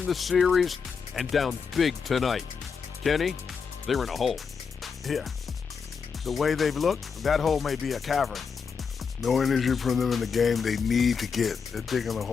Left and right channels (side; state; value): right; quieter; 5.9 dB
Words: the series and down big tonight. Kenny, they're in a hole. Yeah. The way they've looked, that hole may be a cavern. No energy from them in the game they need to get. They're digging a